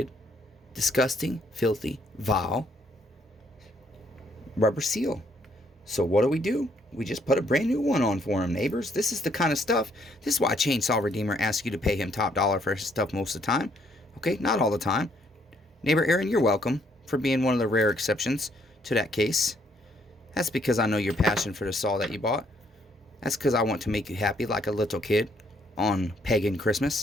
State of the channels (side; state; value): both; normal; correlation 0.69